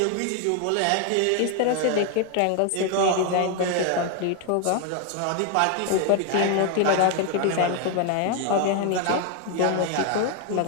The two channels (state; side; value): different; both; correlation 0.01